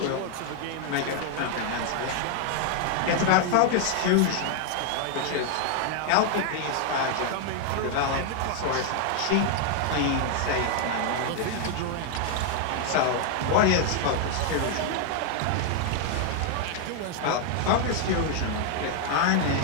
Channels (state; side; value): different; both; correlation 0.00